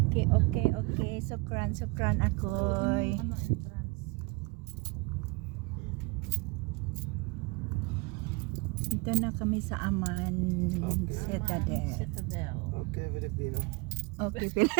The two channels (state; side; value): quieter; left; 26.1 dB